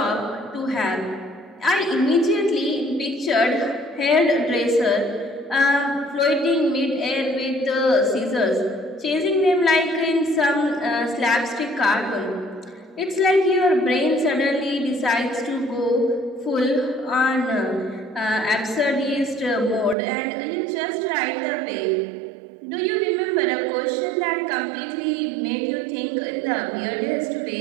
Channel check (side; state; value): left; drops out; at 20.0 s